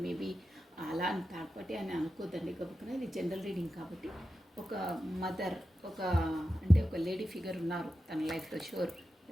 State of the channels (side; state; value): both; normal; correlation 0.91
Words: మేబీ అలా అని థర్డ్ పార్టీ అని అనుకోద్దండి. గబుక్కున ఇది జనరల్ రీడింగ్ కాబట్టి ఒక మదర్, ఒక అంటే ఒక లేడీ ఫిగర్ ఉన్నారు తన లైఫ్లో షూర్.